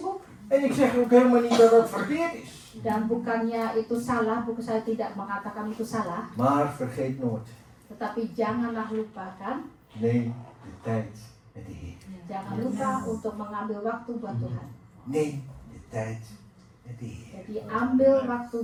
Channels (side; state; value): both; identical; correlation 1.00